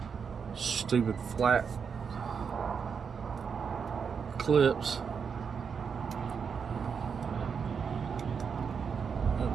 Stupid flat clips.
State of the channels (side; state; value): left; quieter; 6.3 dB